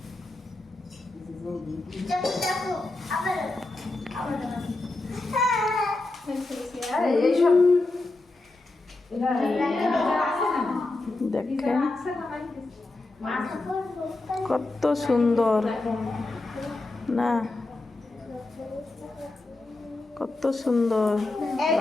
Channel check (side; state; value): right; quieter; 3.0 dB